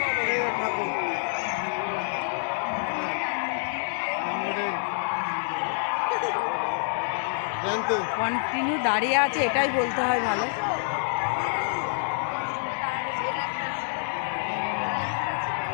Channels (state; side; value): silent; right; digital silence